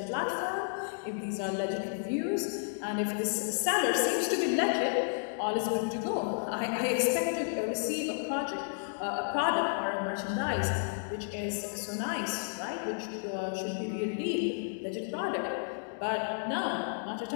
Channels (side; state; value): right; silent; digital silence